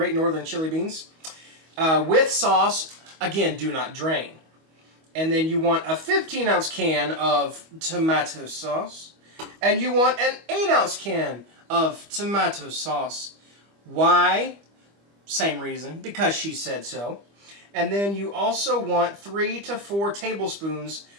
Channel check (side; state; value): left; late; 25 ms